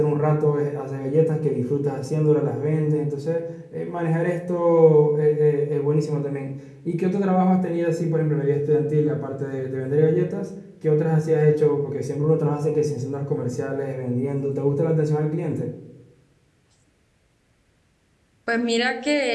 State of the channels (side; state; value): both; identical; correlation 1.00